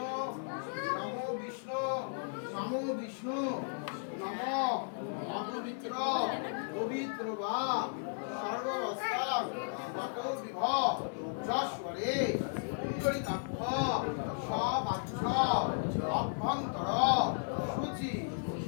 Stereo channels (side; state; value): right; silent; 55 dB below the other